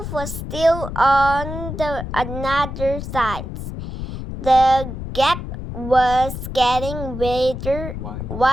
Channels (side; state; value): left; noise; rumble, 7 dB below the sound